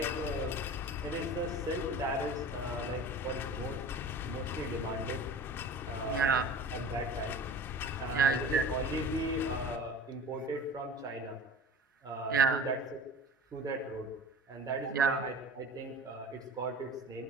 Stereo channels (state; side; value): normal; both; correlation 0.38